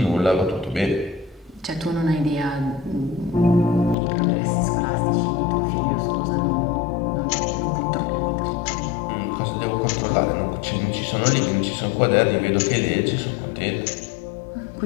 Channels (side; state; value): right; drops out; at 4.0 s